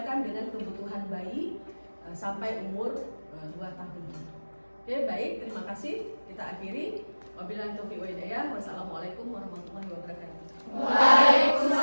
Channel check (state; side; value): inverted; both; correlation -1.00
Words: dengan kebutuhan bayi sampai umur 2 tahun. Oke, baik, terima kasih. Kita akhiri. Wabillahi taufiq wa hidayah. Wassalamualaikum warahmatullahi wabarakatuh.